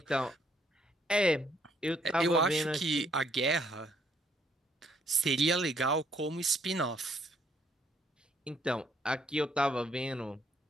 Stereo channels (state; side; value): normal; both; correlation 0.68